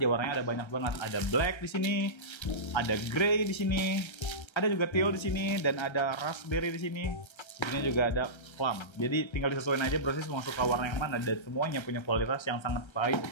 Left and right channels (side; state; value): right; late; 1.3 ms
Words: warnanya ada banyak banget. Ada black di sini, ada grey di sini, ada juga teal di sini, dan ada raspberry di sini. Di sini juga ada plum. Jadi tinggal disesuaikan aja Brosys mau suka warna yang mana, dan semuanya punya kualitas yang sangat baik